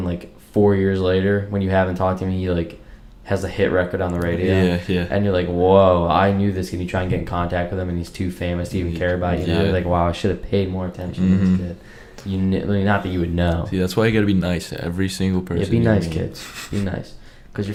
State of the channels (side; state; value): both; identical; correlation 1.00